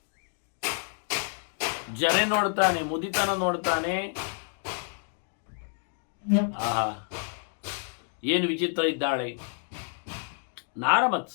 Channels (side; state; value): right; silent; 59 dB below the other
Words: ಜರೆ ನೋಡ್ತಾನೆ, ಮುದಿತನ ನೋಡ್ತಾನೆ. ಆಹಾ, ಏನು ವಿಚಿತ್ರ ಇದ್ದಾಳೆ.